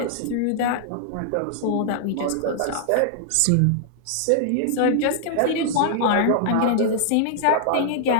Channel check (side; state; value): both; different; correlation -0.01